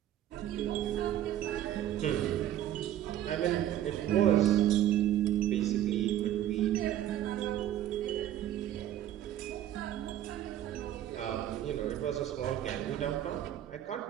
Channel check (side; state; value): left; quieter; 11.9 dB